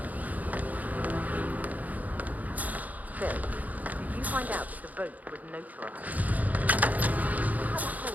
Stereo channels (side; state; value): left; late; 0.078 ms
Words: Phil, did you find out that the vote was notarized? How the